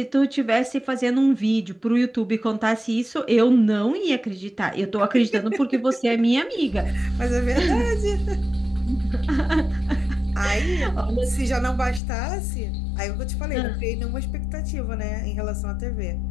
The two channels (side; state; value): right; drops out; at 12.0 s